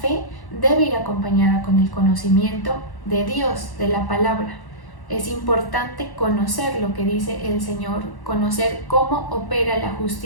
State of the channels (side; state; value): right; late; 1.1 ms